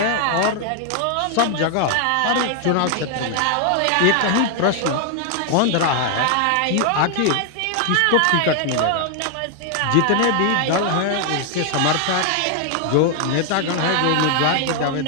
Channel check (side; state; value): both; different; correlation 0.00